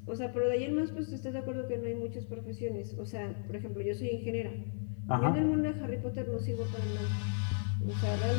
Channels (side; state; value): right; silent; 54 dB below the other